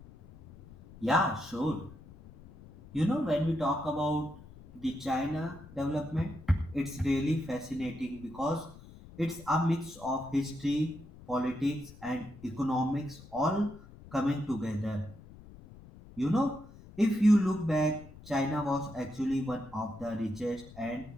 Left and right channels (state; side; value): noise; left; rumble, 19 dB below the sound